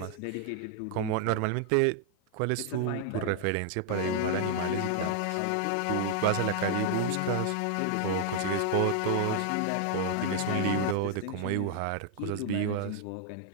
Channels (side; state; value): both; different; correlation 0.00